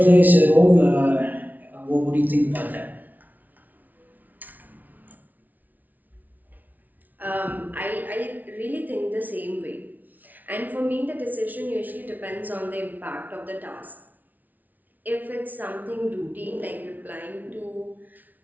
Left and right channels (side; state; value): left; late; 0.079 ms